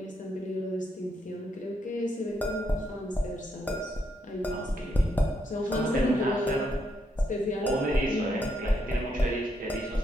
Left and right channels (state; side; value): normal; both; correlation 0.77